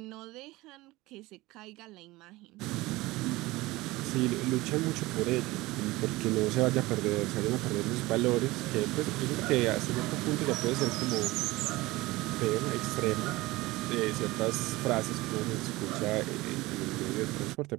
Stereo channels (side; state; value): left; quieter; 20.1 dB